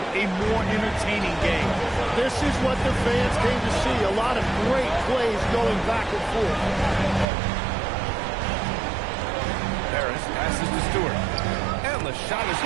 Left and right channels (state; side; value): drops out; left; at 7.2 s